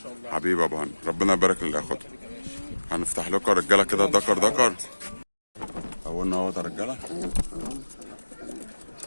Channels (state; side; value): inverted; both; correlation -1.00